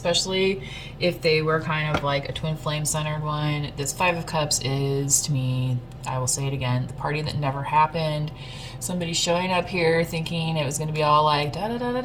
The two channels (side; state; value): both; identical; correlation 1.00